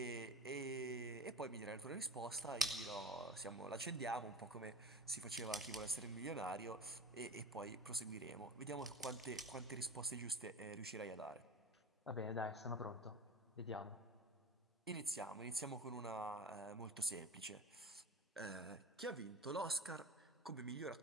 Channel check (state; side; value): normal; both; correlation 0.34